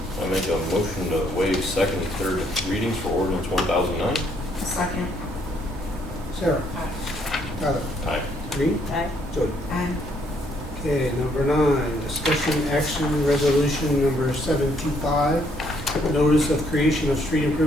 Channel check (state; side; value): normal; both; correlation 0.69